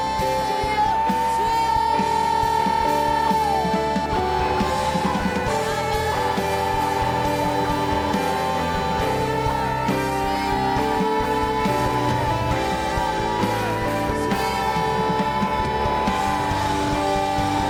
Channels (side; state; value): both; identical; correlation 1.00